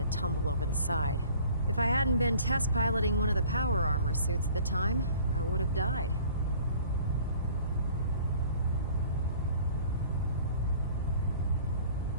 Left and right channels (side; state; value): both; inverted; correlation -0.51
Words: tumble over the side. If I hadn't been test piloting one of the power armor suits at the time, I would have died.